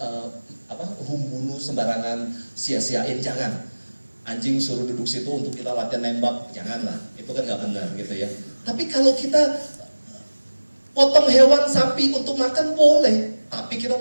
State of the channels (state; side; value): inverted; both; correlation -1.00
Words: membunuh sembarangan, sia-siain, jangan. Anjing suruh duduk situ untuk kita latihan nembak, janganlah. Itu kan nggak benar gitu ya. Tapi kalau kita potong hewan sapi untuk makan boleh, tapi kita